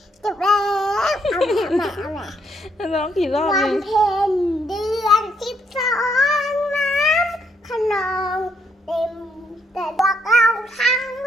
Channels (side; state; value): both; normal; correlation 0.73